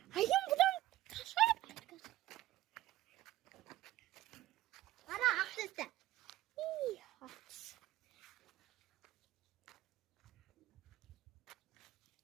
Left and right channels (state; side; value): quieter; left; 15.5 dB